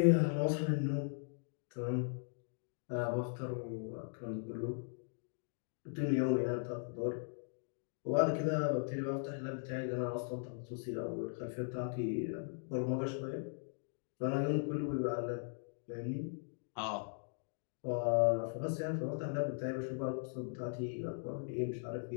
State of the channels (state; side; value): silent; right; digital silence